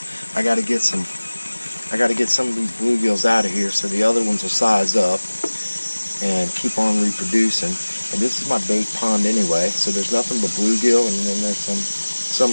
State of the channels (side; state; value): both; inverted; correlation -1.00